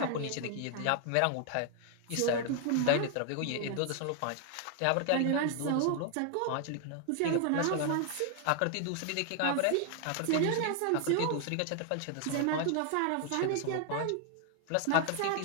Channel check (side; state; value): both; different; correlation 0.00